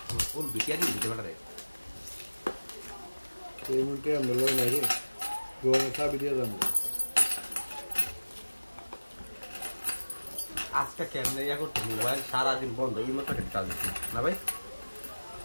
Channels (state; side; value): inverted; both; correlation -1.00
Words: ফুল বিটিয়ারি দিতে পারে। এই মুহূর্তে আমরা লই নাই রে, গোয়া চাবি দিয়ে যাবো। আজকে কেমনে ইয়া করতে মোবাইল সারাদিন বন্ধ, এই মতো একটা কাজ না ভাই।